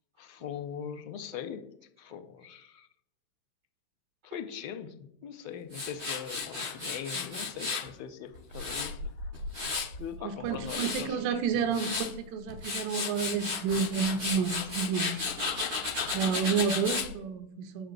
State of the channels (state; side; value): late; left; 16 ms